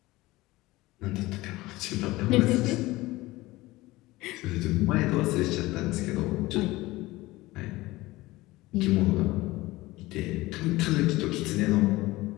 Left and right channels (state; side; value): quieter; right; 19.3 dB